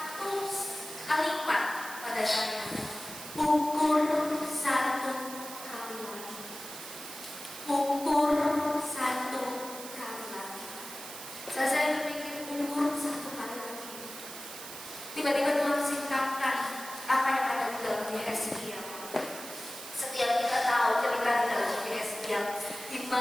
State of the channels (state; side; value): noise; right; hiss, 11 dB below the sound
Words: kalimat pada saya. Ukur satu kali lagi. Ukur satu kali lagi. Saat saya berpikir ukur satu kali lagi, tiba-tiba Tuhan singkapkan apa yang ada di dalam Yesaya. Setiap kita tahu cerita di dalam Yesaya, di